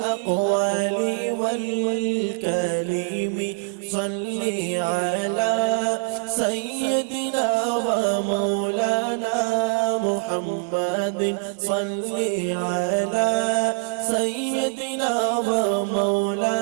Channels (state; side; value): silent; left; 63 dB below the other